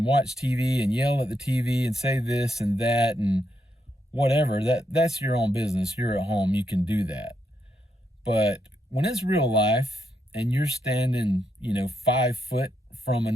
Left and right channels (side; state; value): both; normal; correlation 0.80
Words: watch TV and yell at the TV and say this and that and whatever, that's your own business. You're at home, you can do that. But when it's real life and you're standing, 5 foot from